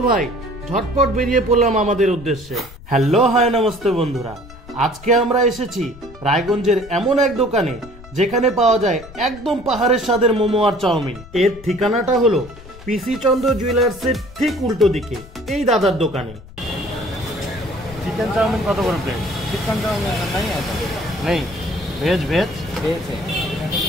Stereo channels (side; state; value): left; noise; rumble, 18 dB below the sound